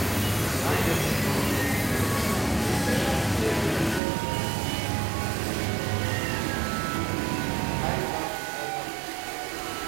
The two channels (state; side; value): drops out; left; at 4.0 s